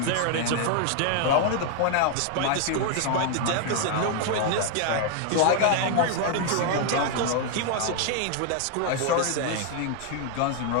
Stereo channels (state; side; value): different; both; correlation 0.00